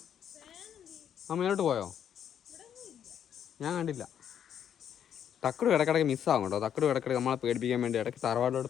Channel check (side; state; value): right; quieter; 9.1 dB